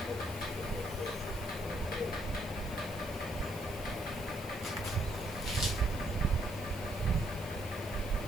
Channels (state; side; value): noise; left; hiss, 15 dB below the sound